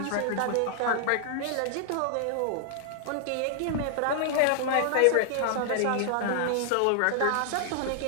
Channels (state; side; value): different; both; correlation -0.01